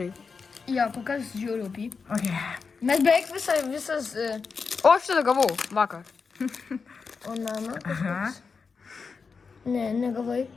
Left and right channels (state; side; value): quieter; right; 5.1 dB